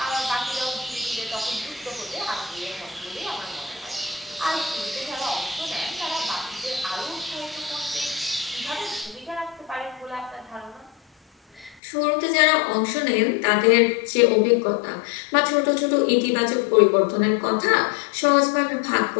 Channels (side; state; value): right; drops out; at 11.8 s